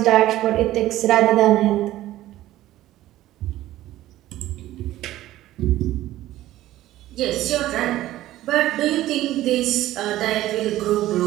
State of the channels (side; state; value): left; quieter; 14.9 dB